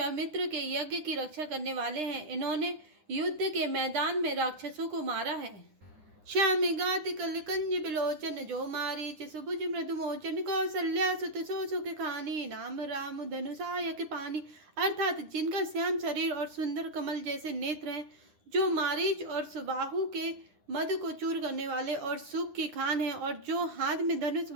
के यज्ञ की रक्षा करने वाले हैं। इन्होंने युद्ध के मैदान में राक्षसों को मारा है। श्याम गात कल कंज बिलोचन जो मारी सुभुज मृदु मोचन कौशल्या सुत सो सुख खानी नाम राम धनुषायक पानी। अर्थात जिनका श्याम शरीर और सुंदर कमल जैसे नेत्र हैं, जो मारीच और सुबाहु के मद को चूर करने वाले और सुख की खान है, और जो हाथ में धनुष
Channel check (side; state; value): left; late; 9.8 ms